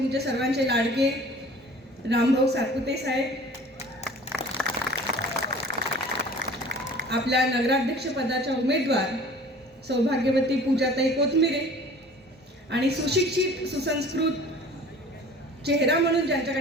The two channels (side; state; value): both; normal; correlation 0.46